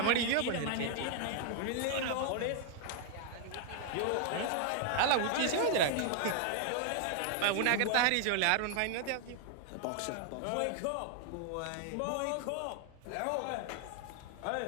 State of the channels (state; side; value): different; both; correlation 0.00